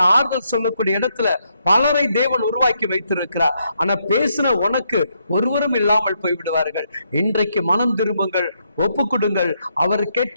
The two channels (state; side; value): inverted; both; correlation -0.77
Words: ஆறுதல் சொல்லக்கூடிய இடத்துல பலரை தேவன் உருவாக்கி வைத்திருக்கிறார். ஆனா பேசின உனக்கு ஒருவரும் இல்லாமல் போய்விடுவார்கள். இன்றைக்கு மனம் திரும்புங்கள், ஒப்பு கொடுங்கள்,